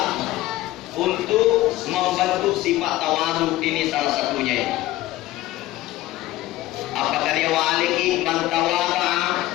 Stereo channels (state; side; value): quieter; right; 16.2 dB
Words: untuk membentuk sifat tawadu, ini salah satunya. Apa karya waliki man tawada'a